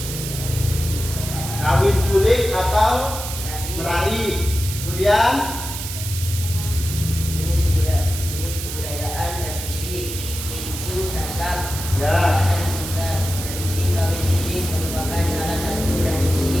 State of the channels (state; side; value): noise; right; hiss, 7 dB below the sound